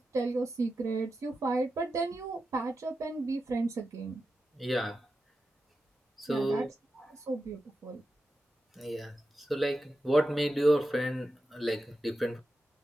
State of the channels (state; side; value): normal; both; correlation 0.91